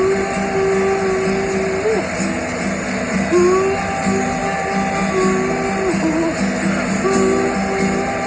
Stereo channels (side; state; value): both; identical; correlation 1.00